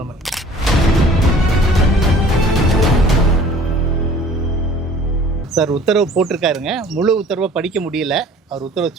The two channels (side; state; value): both; normal; correlation 0.50